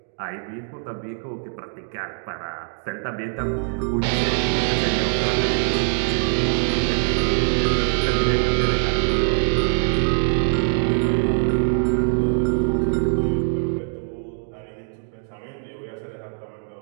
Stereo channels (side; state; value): left; silent; digital silence